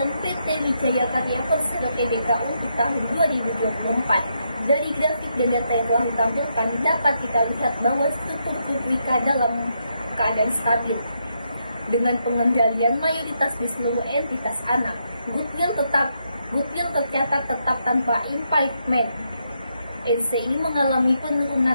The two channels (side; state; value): both; inverted; correlation -0.79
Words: PT Wijaya Karya Persero DKU di tahun 2024. Dari grafik dan data yang telah ditampilkan, dapat kita lihat bahwa struktur grup Wika dalam keadaan stabil. Dengan pengendalian mayoritas di seluruh entitas anak, goodwill tercatat tetap tanpa impairment. NCI mengalami penurunan